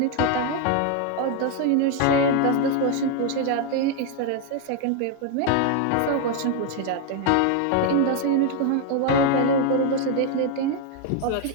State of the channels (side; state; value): both; different; correlation 0.01